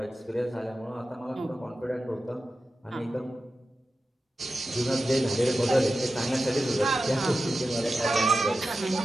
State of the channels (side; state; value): both; normal; correlation 0.92